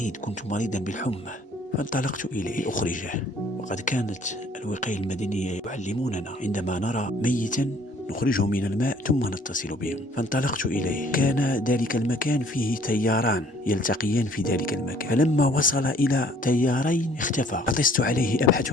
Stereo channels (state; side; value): normal; both; correlation 0.58